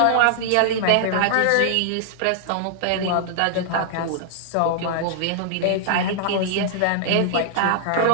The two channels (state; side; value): different; both; correlation -0.01